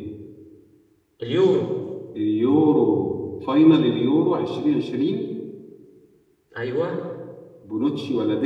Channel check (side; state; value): both; identical; correlation 1.00